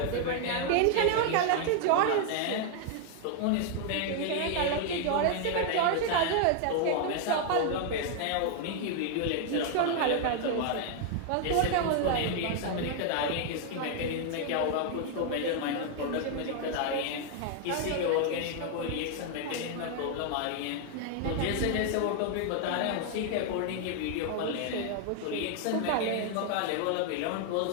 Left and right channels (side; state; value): both; different; correlation 0.00